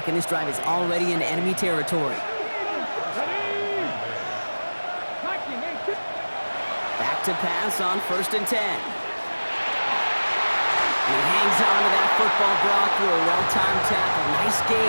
and this drive is already in enemy territory. Back to pass on 1st and 10. He hangs on to that football, Brock, through a well-timed tackle. Nice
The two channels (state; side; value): inverted; both; correlation -1.00